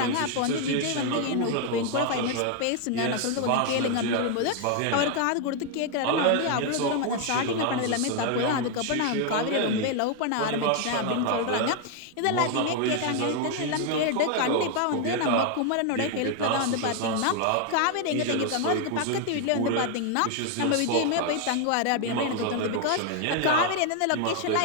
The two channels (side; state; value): both; different; correlation 0.00